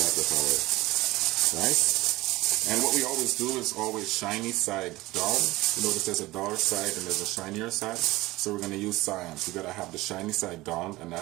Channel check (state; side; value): quieter; left; 19.4 dB